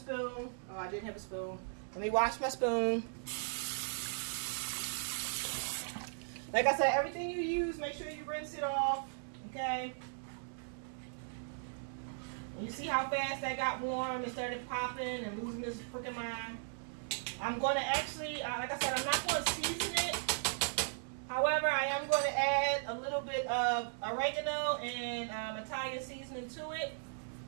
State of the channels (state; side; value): silent; left; digital silence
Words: Oh, I didn't have a spoon. Let me wash my spoon. Like I said, everything you use, make sure you rinse it off, okay? And you see how fast that got warm and started popping and losing this freaking mind. I'm going to actually, like I said, I'm not going to season it. However, I am going to add a little bit of oregano and Italian seasoning to it